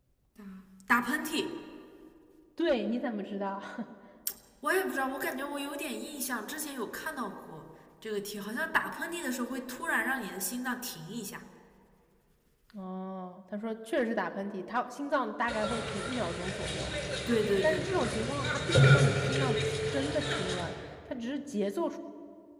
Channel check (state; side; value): identical; both; correlation 1.00